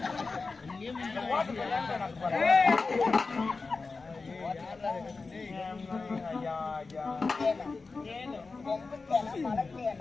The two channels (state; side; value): quieter; right; 4.1 dB